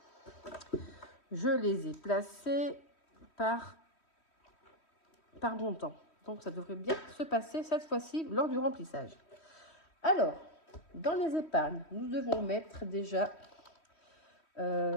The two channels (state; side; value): late; right; 3.1 ms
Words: Je les ai placés par montant. Donc, ça devrait bien se passer cette fois-ci lors du remplissage. Alors, dans les épargnes, nous devons mettre déjà